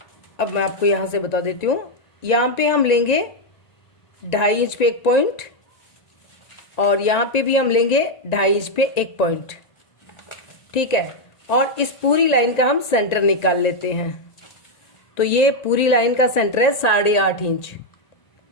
अब मैं आपको यहां से बता देती हूं, यहां पे हम लेंगे 2.5 इंच पे एक पॉइंट, और यहां पे भी हम लेंगे 2.5 इंच पे एक पॉइंट, ठीक है। और इस पूरी लाइन का हम सेंटर निकाल लेते हैं। तो ये पूरी लाइन का सेंटर है 8.5 इंच,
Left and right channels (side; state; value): right; late; 1.9 ms